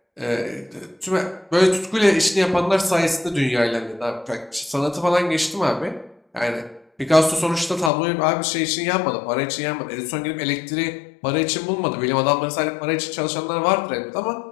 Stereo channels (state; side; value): drops out; right; at 7.9 s